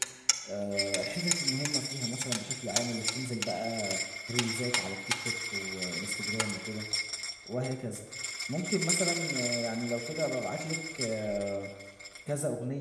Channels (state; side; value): identical; both; correlation 1.00